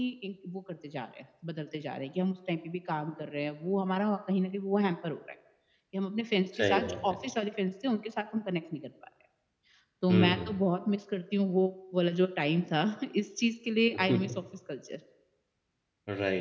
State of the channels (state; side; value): identical; both; correlation 1.00